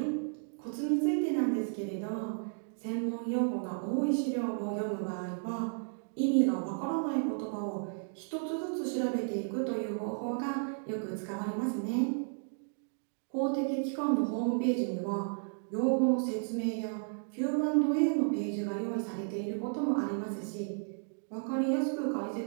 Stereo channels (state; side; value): silent; left; digital silence